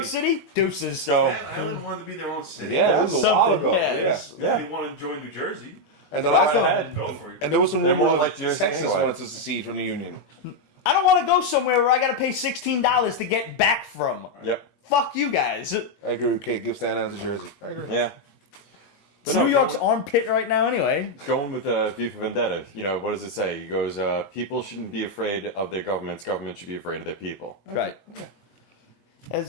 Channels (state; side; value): late; right; 21 ms